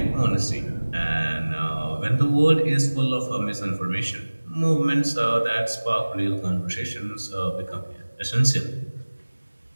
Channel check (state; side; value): inverted; both; correlation -1.00